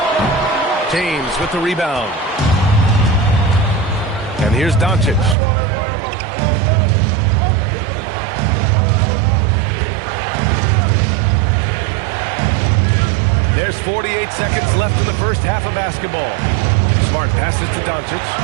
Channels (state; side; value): drops out; left; at 5.4 s